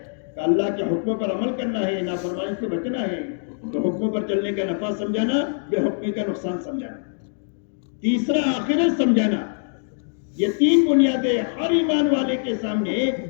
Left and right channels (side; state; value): right; silent; digital silence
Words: کہ اللہ کے حکموں پر عمل کرنا ہے، نافرمانی سے بچنا ہے. تو حکموں پر چلنے کا نفع سمجھانا، بے حکمی کا نقصان سمجھانا. تیسرا آخرت سمجھانا. یہ 3 بنیادیں ہر ایمان والے کے سامنے